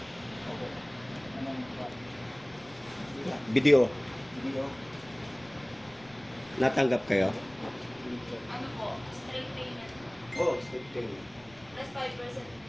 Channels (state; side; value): noise; left; rumble, 25 dB below the sound